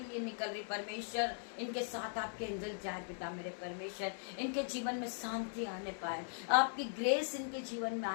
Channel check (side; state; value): right; silent; digital silence